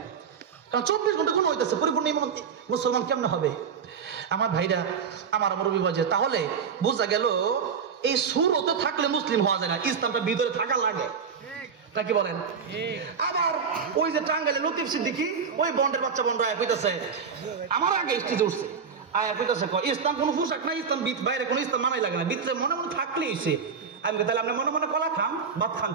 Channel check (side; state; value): left; quieter; 6.3 dB